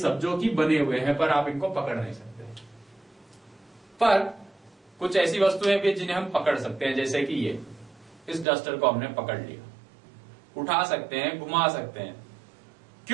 जो कि बने हुए हैं, पर आप इनको पकड़ नहीं सकते। पर कुछ ऐसी वस्तुएं भी जिन्हें हम पकड़ सकते हैं, जैसे कि ये, इस डस्टर को हमने पकड़ लिया, उठा सकते हैं, घुमा सकते हैं।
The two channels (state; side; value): drops out; left; at 8.5 s